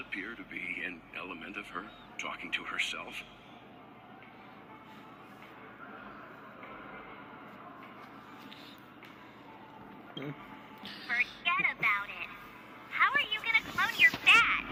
to be an element of her talking to herself. Forget about it. How are you gonna clone your bat?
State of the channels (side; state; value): both; identical; correlation 1.00